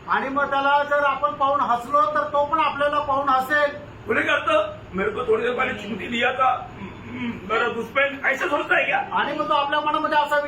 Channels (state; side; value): identical; both; correlation 1.00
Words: आणि मग त्याला जर आपण पाहून हसलो तर तो पण आपल्याला पाहून हसेल. बोले करता मेरे को थोड़ी देर पहले चिमटी दिया था, मेरा दुश्मन ऐसा सोचता है क्या? आणि मग तो आपल्या मनामध्ये असा